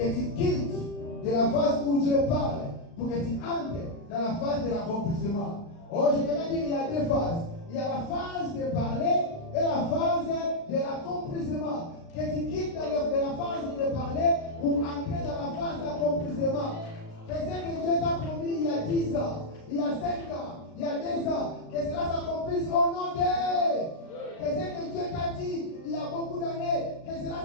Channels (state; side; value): late; right; 36 ms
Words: tu quittes de la phase où Dieu parle pour que tu entres dans la phase de l'accomplissement. Oh, je voudrais dire qu'il y a deux phases. Il y a la phase de parler et la phase de l'accomplissement. Que tu quittes de la phase de parler pour entrer dans la phase d'accomplissement. Que ce que Dieu t'a promis il y a 10 ans, il y a 5 ans, il y a 2 ans, que cela s'accomplisse au nom de. Que ce que Dieu t'a dit il y a beaucoup d'années, que cela